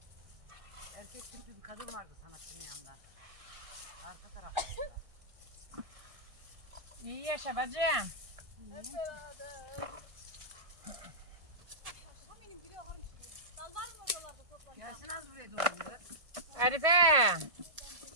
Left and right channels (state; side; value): late; left; 1.8 ms